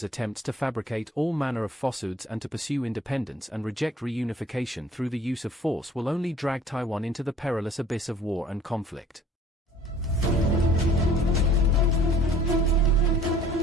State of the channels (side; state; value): both; normal; correlation 0.53